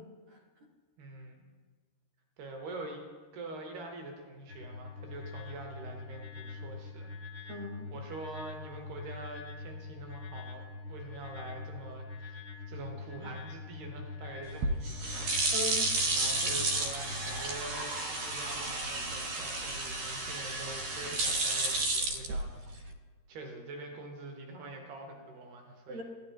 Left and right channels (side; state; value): left; late; 13 ms